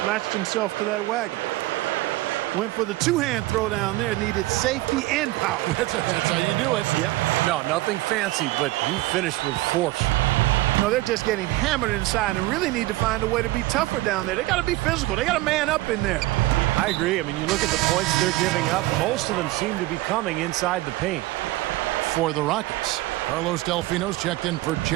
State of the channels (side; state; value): left; quieter; 18.4 dB